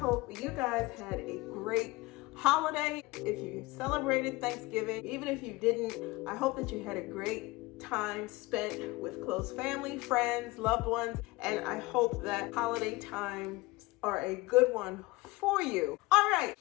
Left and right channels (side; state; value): right; quieter; 21.8 dB